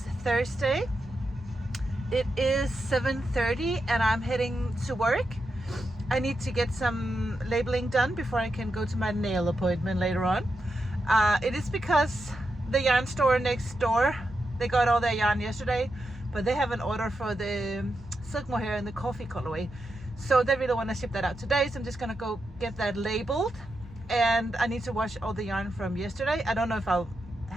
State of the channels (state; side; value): normal; both; correlation 0.86